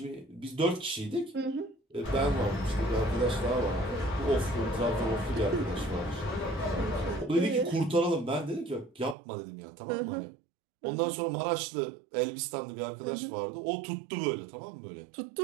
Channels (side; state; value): left; drops out; at 9.2 s